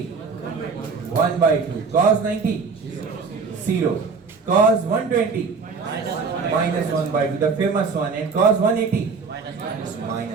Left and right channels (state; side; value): quieter; left; 5.0 dB